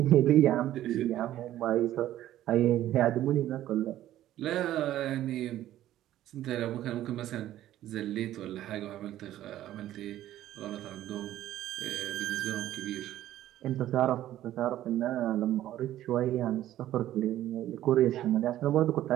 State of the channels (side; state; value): left; quieter; 13.3 dB